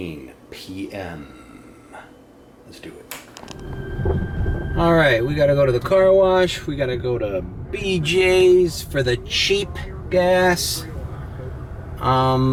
p.m. Let's do it. Alright, we gotta go to the car wash. We gotta go to BJ's for the cheap gas.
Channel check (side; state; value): both; identical; correlation 1.00